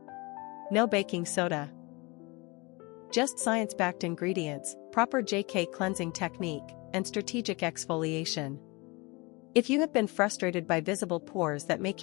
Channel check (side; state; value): right; quieter; 26.1 dB